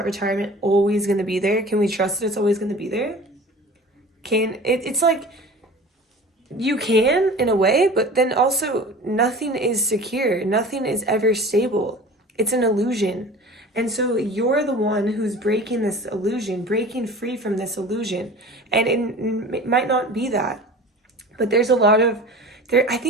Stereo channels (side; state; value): both; normal; correlation 0.40